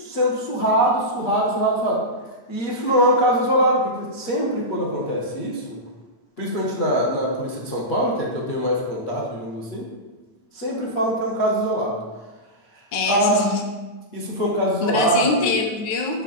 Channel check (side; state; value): right; late; 9.3 ms